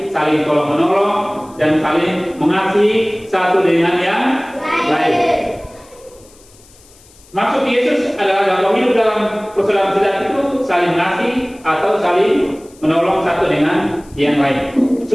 saling tolong menolong, dan saling mengasihi satu dengan yang lain. Maksud Yesus adalah kalau hidup dalam persaudaraan sejati itu saling mengasihi atau saling menolong satu dengan yang lain.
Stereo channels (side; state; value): left; noise; hiss, 27 dB below the sound